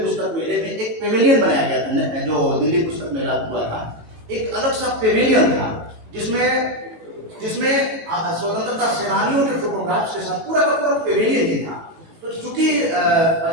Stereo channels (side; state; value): left; late; 18 ms